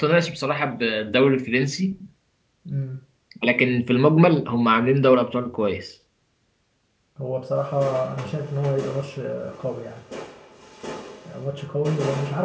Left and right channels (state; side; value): identical; both; correlation 1.00